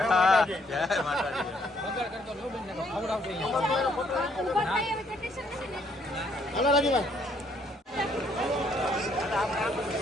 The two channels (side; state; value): both; normal; correlation 0.68